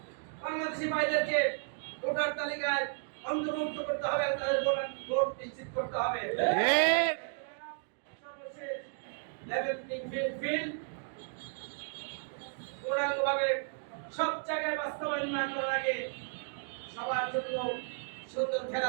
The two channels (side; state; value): left; silent; 55 dB below the other